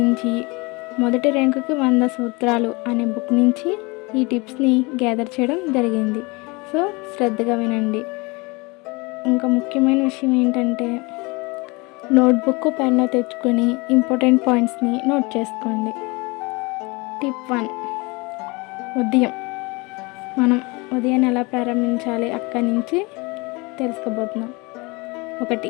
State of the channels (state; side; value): quieter; right; 26.2 dB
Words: మొదటి ర్యాంకుకి 100 సూత్రాలు అనే బుక్ నుంచి ఈ టిప్స్ని గ్యాదర్ చేయడం జరిగింది. సో శ్రద్ధగా వినండి. ఇంకా ముఖ్యమైన విషయం ఏంటంటే నోట్బుక్ పెన్ను తెచ్చుకొని ఇంపార్టెంట్ పాయింట్స్ని నోట్ చేసుకోండి. టిప్ 1, మనం ఉదయాన్ని ఎలా ప్రారంభించాలి అక్కడి నుంచి తెలుసుకోబోతున్నాం.